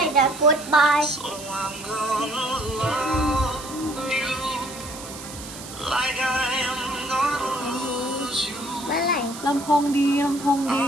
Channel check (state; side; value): noise; right; hiss, 13 dB below the sound